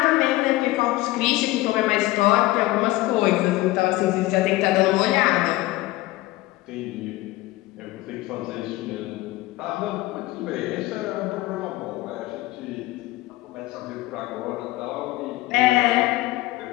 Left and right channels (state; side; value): quieter; right; 18.6 dB